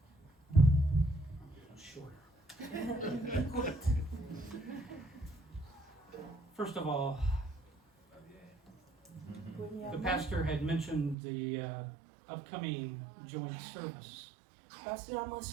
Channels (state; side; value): drops out; left; at 11.2 s